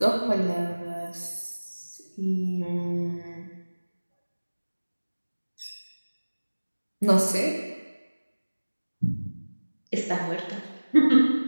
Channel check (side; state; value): both; inverted; correlation -1.00